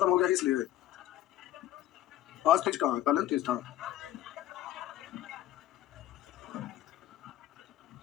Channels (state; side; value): quieter; right; 13.4 dB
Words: हो गया इसलिए। आज तीज कहाँ है? कल तीज था।